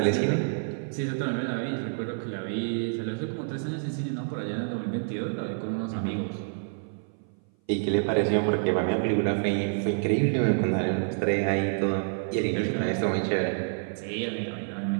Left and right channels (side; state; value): left; silent; 57 dB below the other